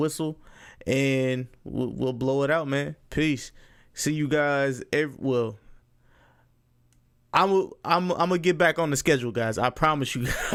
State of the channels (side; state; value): both; identical; correlation 1.00